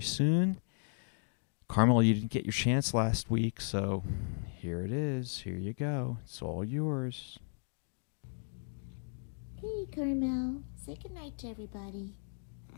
soon. Carmel, you didn't get your chance last week, so here it is. Here you go. It's all yours. Hey, Carmel. Say goodnight to everybody.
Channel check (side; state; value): right; silent; digital silence